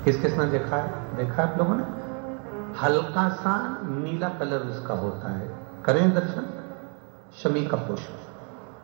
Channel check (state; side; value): quieter; left; 37.9 dB